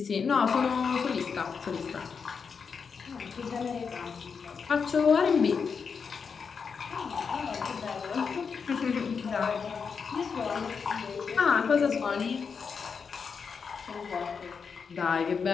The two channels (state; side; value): quieter; right; 5.8 dB